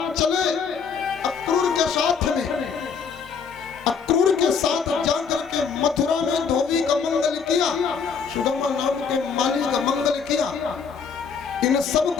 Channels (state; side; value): quieter; right; 6.1 dB